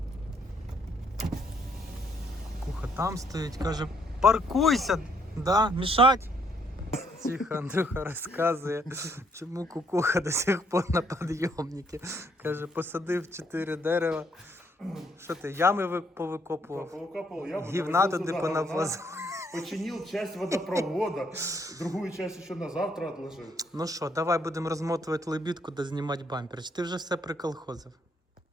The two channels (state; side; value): normal; both; correlation 0.69